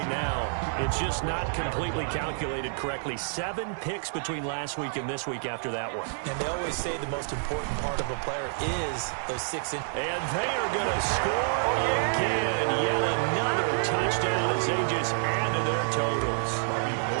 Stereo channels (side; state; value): left; silent; 59 dB below the other